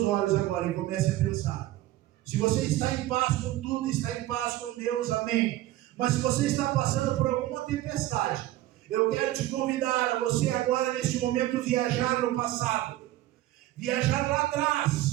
olhos agora e comece a pensar. Se você está em paz com tudo, está em paz com Deus, amém. Mas se você está passando por alguma tempestade, eu quero te convidar a você agora, neste momento, viajar no passado. Viajar lá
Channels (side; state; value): left; quieter; 15.3 dB